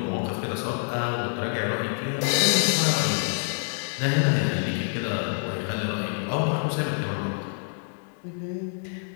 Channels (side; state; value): right; silent; digital silence